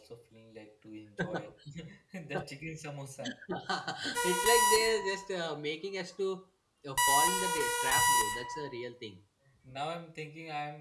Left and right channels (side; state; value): both; identical; correlation 1.00